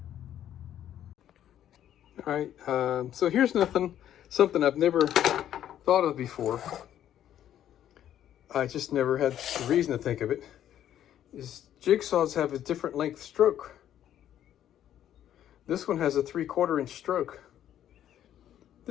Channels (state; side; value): quieter; right; 11.0 dB